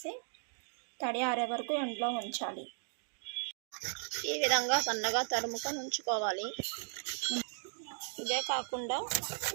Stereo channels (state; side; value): silent; left; 54 dB below the other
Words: తడి ఆరే వరకు ఎండలో ఉంచాలి. ఈ విధంగా సన్నగా తరుముకొని ఉంచుకోవాలి. ఇదే కాకుండా